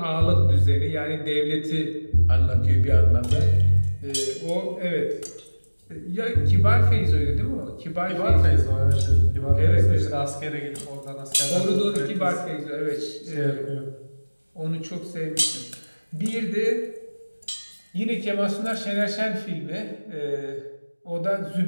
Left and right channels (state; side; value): inverted; both; correlation -1.00